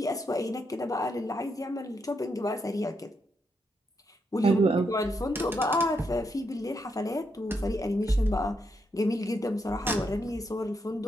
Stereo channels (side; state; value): both; normal; correlation 0.80